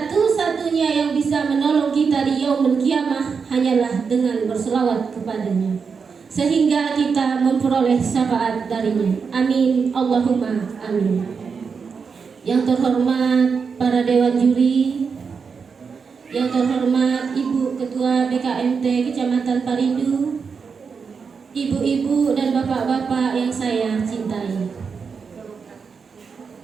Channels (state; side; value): quieter; left; 5.6 dB